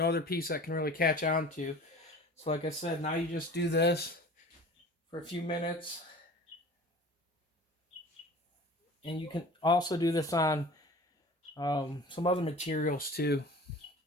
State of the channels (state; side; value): normal; both; correlation 0.41